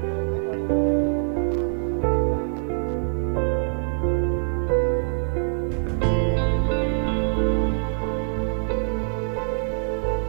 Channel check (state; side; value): silent; left; digital silence